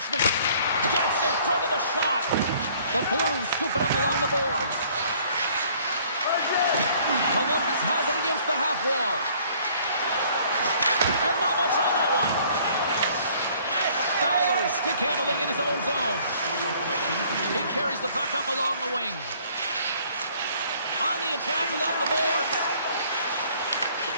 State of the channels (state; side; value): inverted; both; correlation -0.58